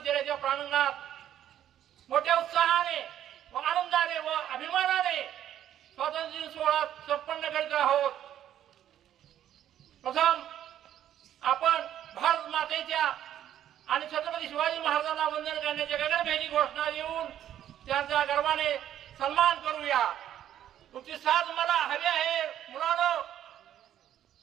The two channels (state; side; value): quieter; left; 11.1 dB